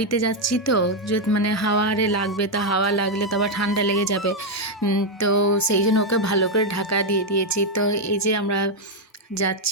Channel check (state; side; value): normal; both; correlation 0.01